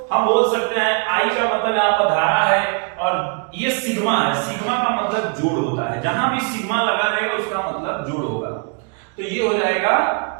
हम बोल सकते हैं, आई का मतलब यहाँ पर धारा है और ये सिग्मा है। सिग्मा का मतलब जोड़ होता है। जहां भी सिग्मा लगा रहेगा उसका मतलब जोड़ होगा। तो ये हो जाएगा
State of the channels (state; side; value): quieter; left; 37.0 dB